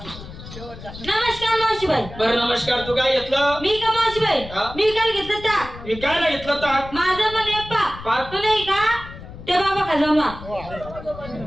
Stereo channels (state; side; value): noise; left; rumble, 14 dB below the sound